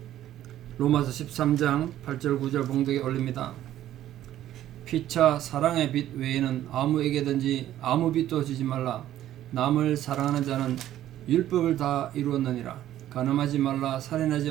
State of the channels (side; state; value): left; quieter; 12.6 dB